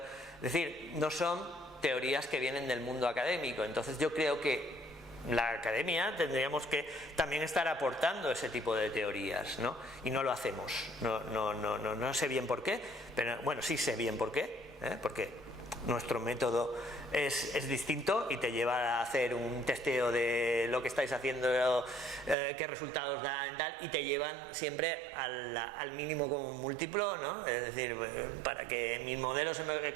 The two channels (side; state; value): left; drops out; at 22.4 s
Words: decir, no son teorías que vienen del mundo académico. Entonces yo creo que la academia tendríamos que también estar aportando ese tipo de teorías, ¿no? Y no lo hacemos, no sé bien por qué, pero bueno, sí sé bien por qué, porque nuestro método es distinto y te lleva a hacer un testeo de lo que estáis haciendo, qué resultados dan, tal, y te llevan siempre al mínimo común múltiplo, ¿no? Es decir, para que mis modelos